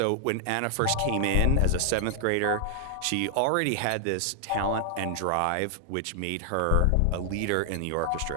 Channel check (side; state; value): both; different; correlation 0.00